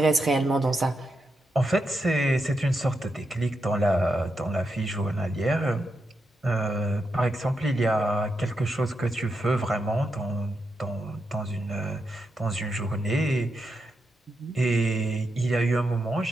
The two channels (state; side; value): normal; both; correlation 0.85